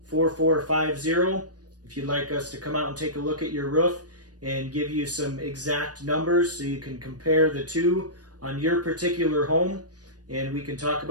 if you'd like us to come out and take a look at your roof and give you some exact numbers so you can compare the two on your particular home, and we can talk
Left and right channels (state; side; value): late; left; 0.69 ms